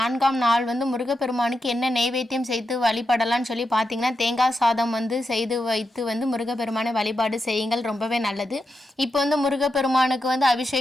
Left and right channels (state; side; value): normal; both; correlation 0.87